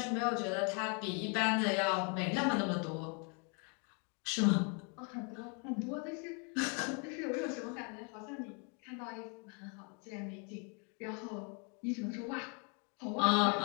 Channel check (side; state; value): right; quieter; 36.6 dB